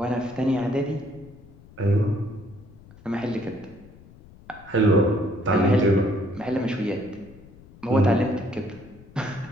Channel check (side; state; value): left; noise; rumble, 22 dB below the sound